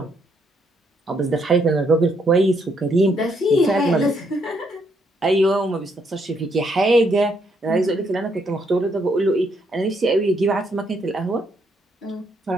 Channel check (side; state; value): both; normal; correlation 0.73